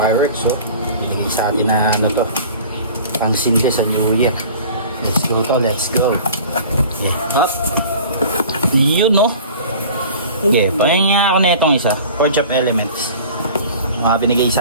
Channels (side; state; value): both; inverted; correlation -0.43